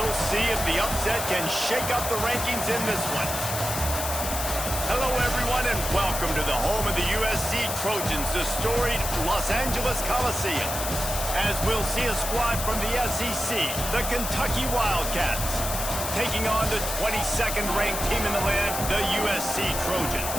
see if the upset can shake up the rankings in this one. Hello, everyone, and welcome to the home of the USC Trojans, the storied Los Angeles Coliseum. As we'll see a squad from the SEC, the Kentucky Wildcats, taking on the 22nd ranked team in the land, the USC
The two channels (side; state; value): left; noise; hiss, 4 dB below the sound